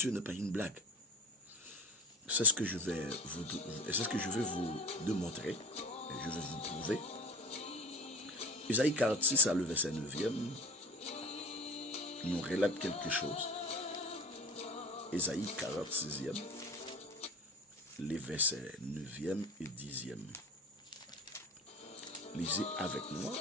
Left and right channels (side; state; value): both; normal; correlation 0.37